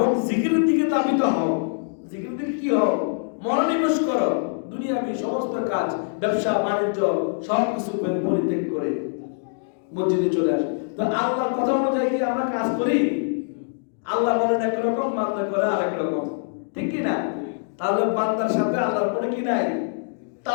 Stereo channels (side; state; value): right; silent; digital silence